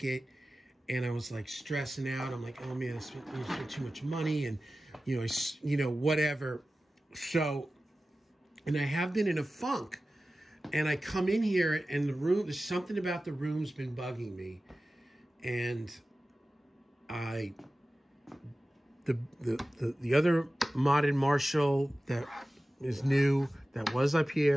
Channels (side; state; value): both; normal; correlation 0.96